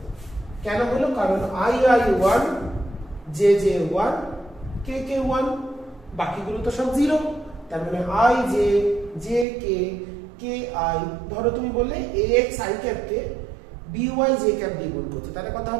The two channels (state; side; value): drops out; left; at 9.5 s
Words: কেন হলো? কারণ i 1, j 1, k 1, বাকিগুলো তো সব 0। তার মানে i j k i। ধরো তুমি বললে ax i cap K by j cap দিয়ে গুণ করছো, তাহলে কত